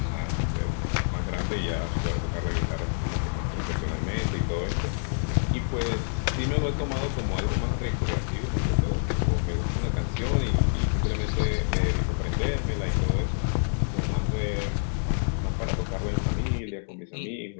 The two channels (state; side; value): silent; right; digital silence